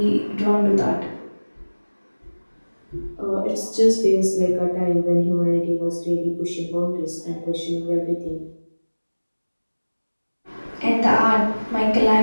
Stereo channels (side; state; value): both; inverted; correlation -1.00